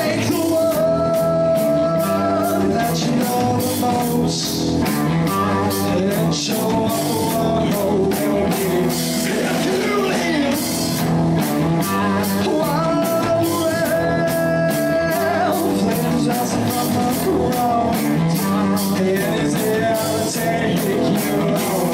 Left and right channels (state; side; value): identical; both; correlation 1.00